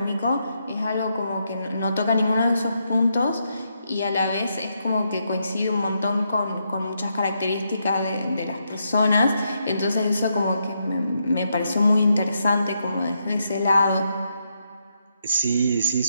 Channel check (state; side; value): inverted; both; correlation -0.80